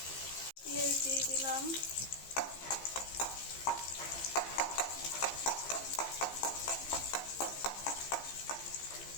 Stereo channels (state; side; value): late; right; 15 ms